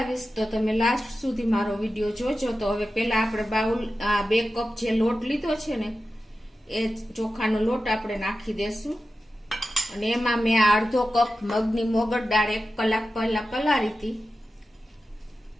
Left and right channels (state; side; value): normal; both; correlation 0.93